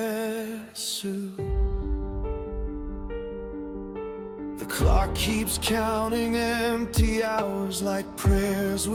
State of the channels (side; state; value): both; identical; correlation 1.00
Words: suit. The clock keeps counting empty hours like prayers